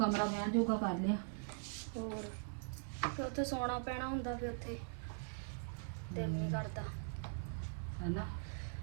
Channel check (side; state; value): left; silent; digital silence